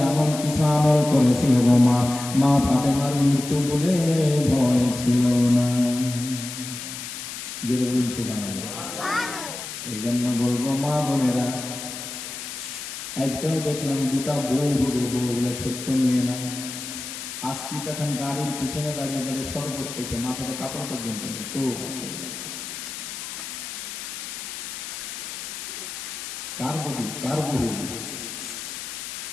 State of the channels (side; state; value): left; noise; hiss, 8 dB below the sound